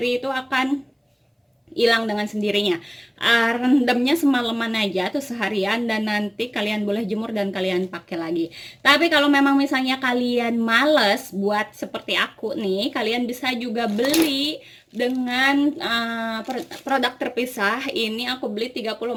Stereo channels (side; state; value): both; identical; correlation 1.00